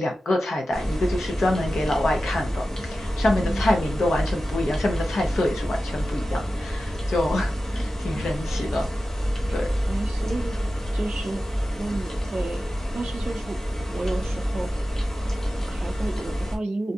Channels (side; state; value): both; normal; correlation 0.94